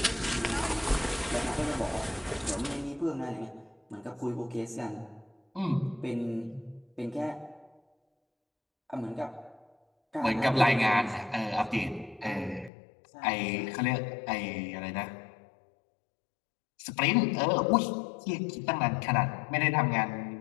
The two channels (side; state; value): right; drops out; at 12.7 s